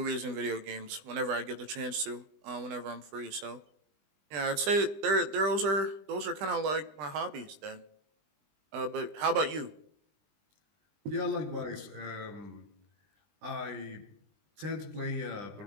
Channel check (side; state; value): left; late; 20 ms